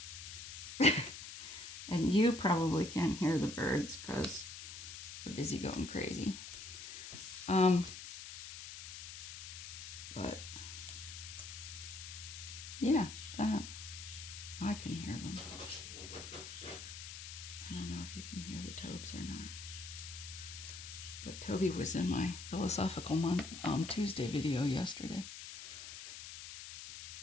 and you probably can't hear the birds because we're busy going crazy. But yeah, that I can hear them. I don't know if you can hear the Tobes or not. But Toby was in my Philosophical Tuesday video yesterday.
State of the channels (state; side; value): noise; left; hiss, 10 dB below the sound